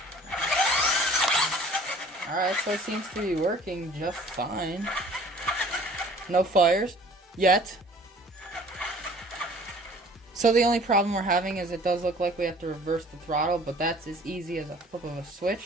Alright, so it seems to be working just fine. No fires. Yet. So the only problem we're having is it does look like we have to reverse the throttle, but that's as easy as a flip of a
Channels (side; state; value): both; normal; correlation 0.51